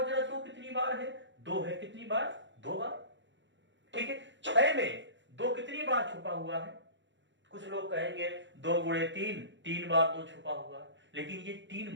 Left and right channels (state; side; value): late; left; 0.54 ms